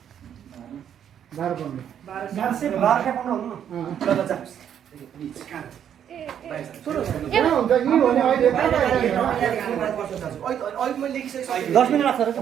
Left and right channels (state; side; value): quieter; left; 9.3 dB